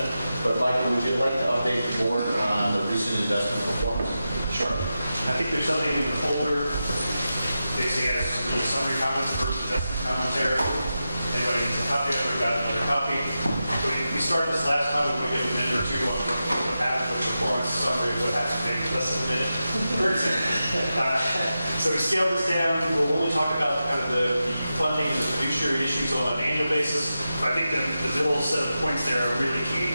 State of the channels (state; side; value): inverted; both; correlation -0.91